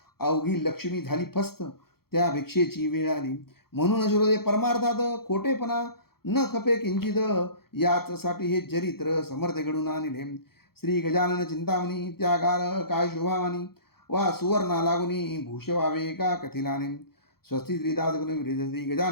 अवघी लक्ष्मी झाली फस्त, त्या भिक्षेची वेळ आली. म्हणून श्रोते परमार्थात खोटेपणा न खपे किंचित, याचसाठी हे चरित्र समर्थ घडून आणले. श्री गजानन चिंतामणी त्यागार काय शोभावानी, वा सुवर्णा लागुनी भूष व्हावे का कथिलाने. स्वस्ती श्रीदास गुण विरेज श्री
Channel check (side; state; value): right; late; 0.94 ms